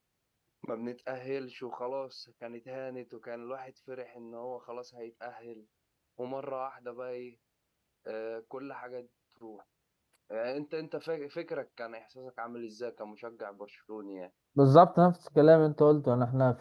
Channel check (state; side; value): identical; both; correlation 1.00